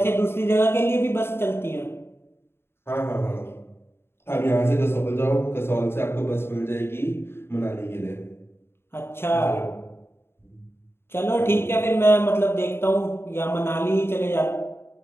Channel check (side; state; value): right; late; 0.11 ms